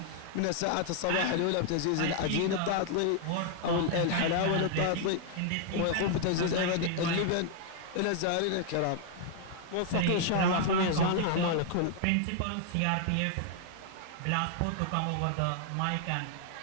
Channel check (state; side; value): different; both; correlation 0.00